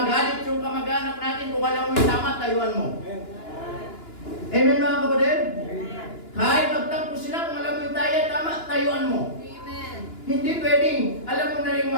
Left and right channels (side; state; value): right; late; 2.9 ms